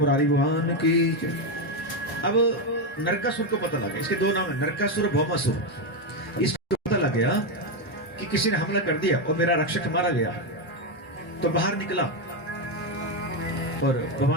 भगवान की। अब नरकासुर को पता लगा, इसके दो नाम है, नरकासुर और भौमासुर। इसको पता लग गया कि किसी ने हमला कर दिया और मेरा रक्षक मारा गया। तो बाहर निकला और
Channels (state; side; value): normal; both; correlation 0.07